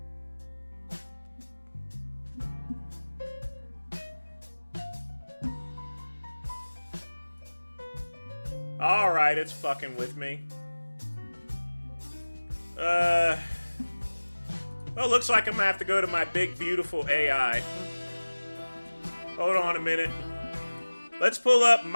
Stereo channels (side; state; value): both; inverted; correlation -1.00